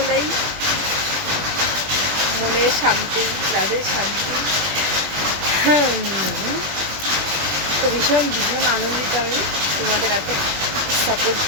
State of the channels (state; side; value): late; left; 20 ms